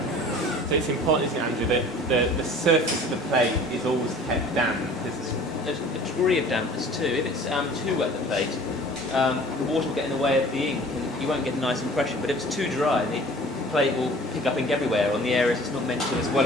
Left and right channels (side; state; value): both; normal; correlation 0.47